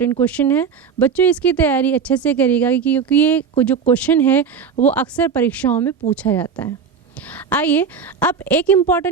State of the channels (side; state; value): left; quieter; 6.2 dB